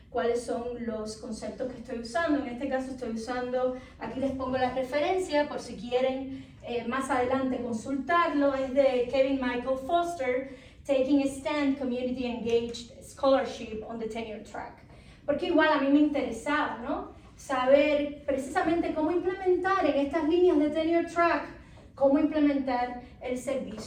cuáles son los conceptos que estoy usando. En este caso estoy usando, aquí les pongo la referencia por si quieren más adelante consultarlo, es de Kevin Michael Foster, Taking a Stand, Community Engaged Scholarship on the Tenure Track. Porque igual a mí me interesaba, ¿no? Saber precisamente cómo implementar en estas líneas de Tenure Track, cómo implementar el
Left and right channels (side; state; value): both; identical; correlation 1.00